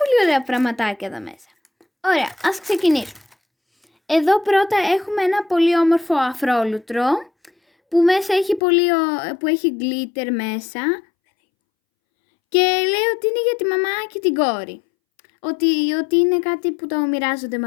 ωραία πραγματάκια εδώ μέσα. Ωραία, ας ξεκινήσουμε. Εδώ πρώτα έχουμε ένα πολύ όμορφο αφρόλουτρο που μέσα έχει που έχει glitter μέσα και λέει ότι είναι για τη μαμά και την κόρη. Ότι είναι κάτι που το μοιράζονται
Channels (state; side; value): drops out; right; at 8.6 s